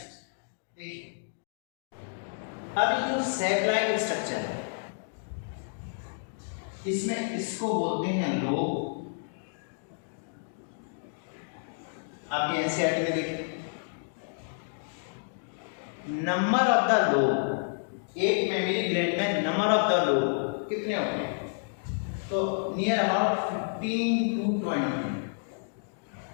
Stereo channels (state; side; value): silent; right; digital silence